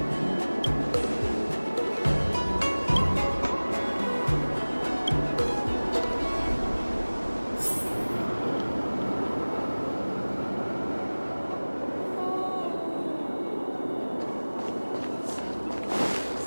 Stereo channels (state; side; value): inverted; both; correlation -1.00